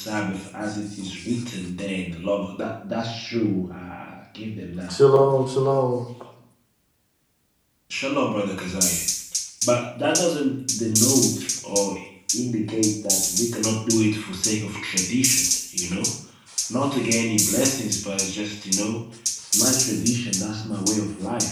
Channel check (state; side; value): identical; both; correlation 1.00